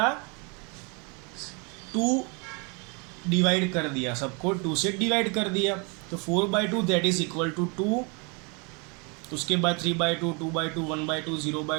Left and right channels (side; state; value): left; quieter; 32.3 dB